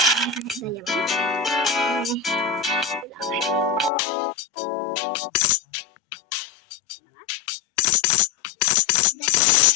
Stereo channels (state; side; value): drops out; right; at 3.9 s